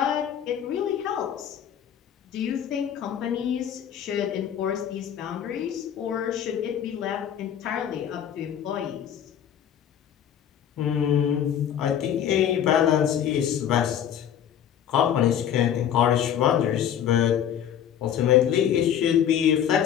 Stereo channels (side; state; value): right; quieter; 9.5 dB